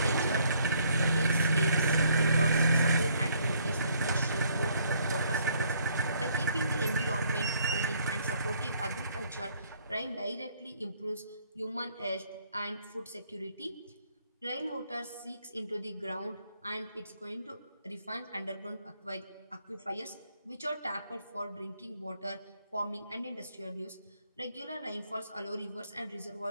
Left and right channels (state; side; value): inverted; both; correlation -0.65